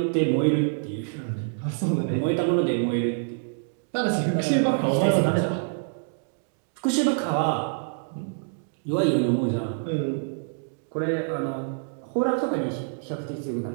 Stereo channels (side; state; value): left; silent; digital silence